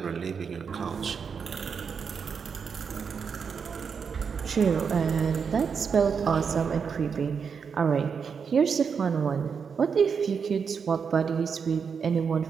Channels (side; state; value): left; quieter; 6.2 dB